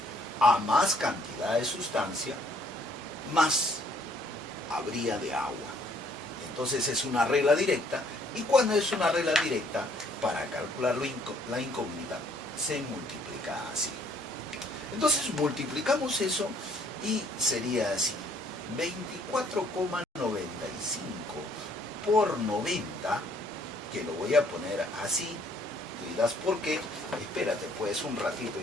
A más cantidad de sustancia, más habría de agua. Entonces es una regla directa, y cuando es una regla directa, para calcular la incógnita, se multiplica así. Entonces multiplicamos eso y sería así. 24,95 por 90, que lo voy a poner así, tú dirás ¿por qué? Espérate pues un ratito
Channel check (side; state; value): both; normal; correlation 0.63